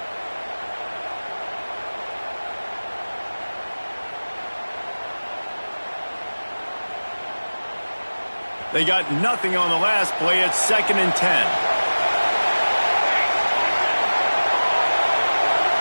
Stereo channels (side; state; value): both; inverted; correlation -1.00